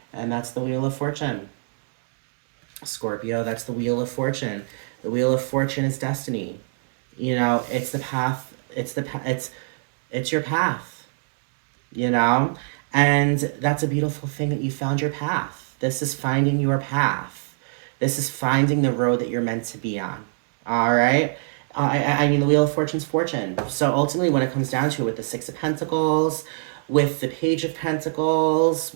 And that's the Wheel of Fortune. Scorpio, that's the Wheel of Fortune. The Wheel of Fortune is destiny. You know, it's the path. It's your path. You know, and that's a beautiful thing that you found your path. This is finding your path. This is finding the road that you're meant to be on. All right. I mean, the Wheel of Fortune's fortune. So ultimately, when it comes down to it, with the Six of Pentacles, with the Page of Pentacles,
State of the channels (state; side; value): silent; left; digital silence